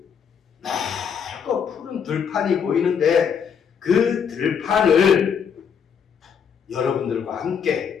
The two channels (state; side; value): quieter; right; 7.2 dB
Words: 넓고 푸른 들판이 보이는데 그 들판을 여러분들과